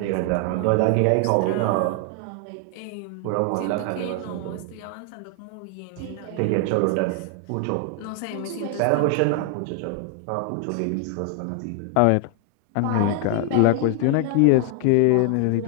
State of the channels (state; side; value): different; both; correlation 0.00